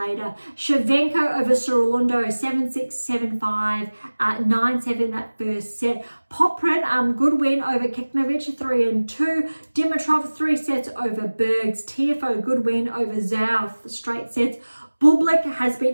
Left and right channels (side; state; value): both; inverted; correlation -1.00